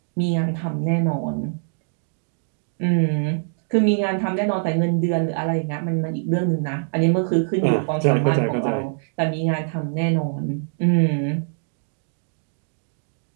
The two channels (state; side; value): silent; left; 63 dB below the other